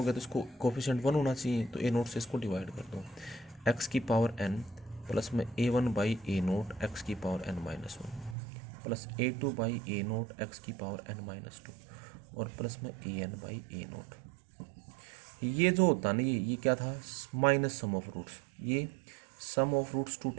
तो इसको कोफिशिएंट 1 होना चाहिए, तो ए नोट से इसको डिवाइड कर दो, एक्स की पावर एन प्लस में a one by a naught x की power n minus one plus a two by a naught x की पावर एन माइनस टू और प्लस में a n by a naught. ये जो होता ना, ये क्या था, माइनस सम ऑफ रूट्स, ये sum of roots two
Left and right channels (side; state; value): left; drops out; at 8.3 s